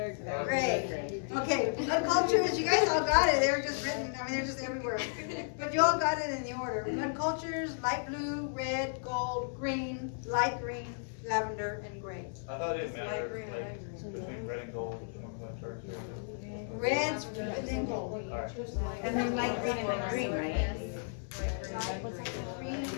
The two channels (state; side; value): silent; right; digital silence